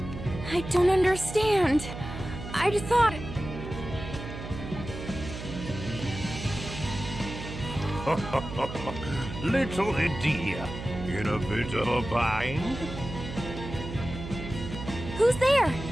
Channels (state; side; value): noise; right; hum, 9 dB below the sound